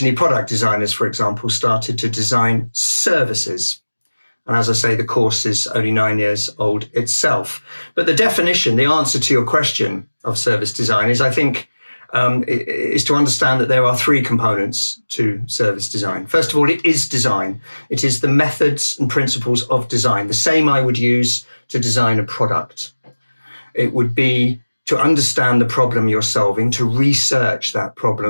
product designers, for example, started to design services. And as I say, the course is only 9 years old itself. But the definition, the answer to your question of service design is, I think, is to understand that there are three components to service design. First of all, it is design. It is the methods and principles of design, the same I would use to design a product. It would be to understand the problem you're solving, to research that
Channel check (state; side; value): inverted; both; correlation -1.00